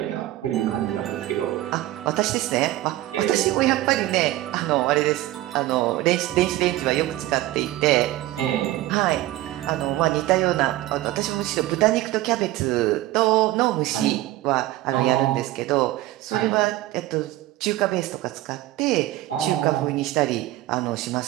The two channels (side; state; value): left; quieter; 16.1 dB